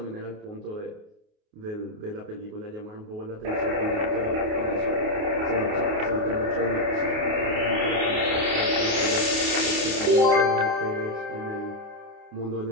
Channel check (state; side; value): late; left; 29 ms